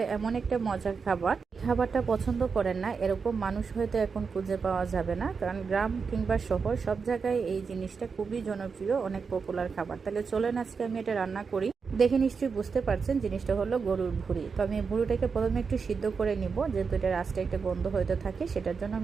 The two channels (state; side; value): quieter; left; 5.4 dB